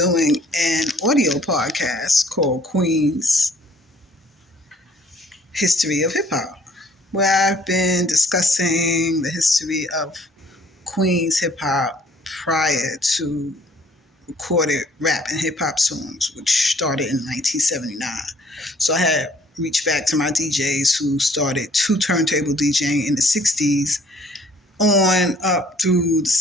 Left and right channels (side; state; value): both; normal; correlation 0.59